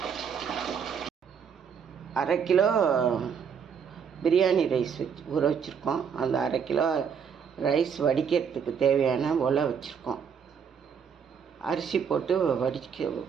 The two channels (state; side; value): quieter; left; 7.0 dB